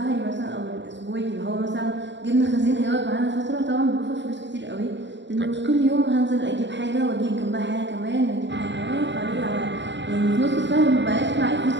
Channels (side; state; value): left; late; 0.52 ms